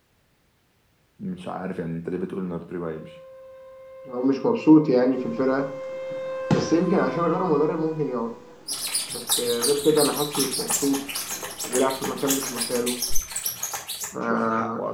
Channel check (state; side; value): identical; both; correlation 1.00